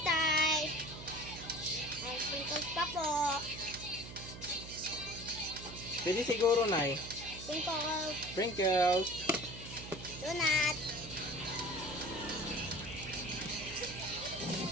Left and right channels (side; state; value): right; noise; hum, 12 dB below the sound